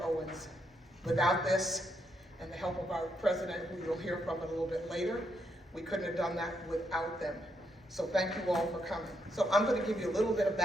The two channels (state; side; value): normal; both; correlation 0.78